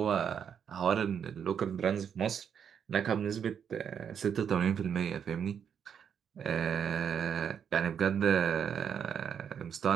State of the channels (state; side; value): quieter; left; 7.9 dB